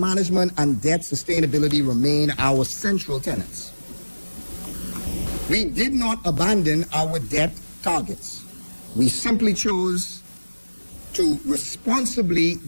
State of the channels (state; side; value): inverted; both; correlation -1.00